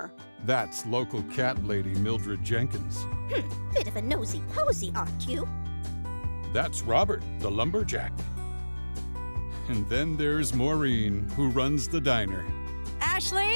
That's local cat lady Mildred Jenkins. Bit of a nosy posy, aren't you? That's Robert, the lumberjack. And then there's Maureen, who runs the diner.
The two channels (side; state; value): both; inverted; correlation -1.00